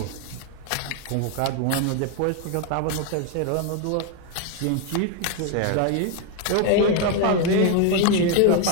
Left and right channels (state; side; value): different; both; correlation 0.01